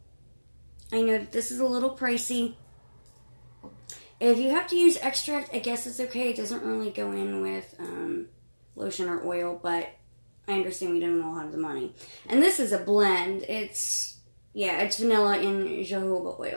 I know this is a little pricey. If you have to use extract, I guess it's okay. It doesn't really go in with lotion or oil, but I understand we don't all have the money. And this is a blend. It's vanilla and jojoba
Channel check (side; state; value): both; inverted; correlation -1.00